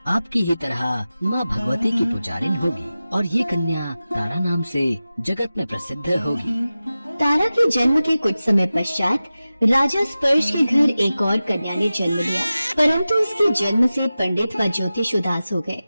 आपकी ही तरह माँ भगवती की पुजारिन होगी और ये कन्या तारा नाम से जगत में प्रसिद्ध होगी। तारा के जन्म के कुछ समय पश्चात राजा स्पर्श के घर एक और कन्या ने जन्म लिया, परंतु उसके जन्म से पंडित व ज्योतिष उदास हो गए।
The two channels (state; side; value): inverted; both; correlation -0.95